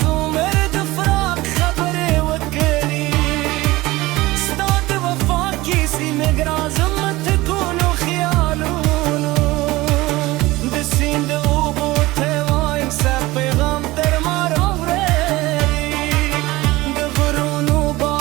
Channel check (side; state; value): left; quieter; 19.5 dB